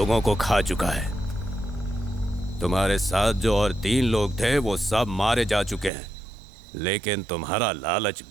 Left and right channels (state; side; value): drops out; left; at 5.9 s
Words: को खा चुका है। तुम्हारे साथ जो और 3 लोग थे वो सब मारे जा चुके हैं, लेकिन तुम्हारा लालच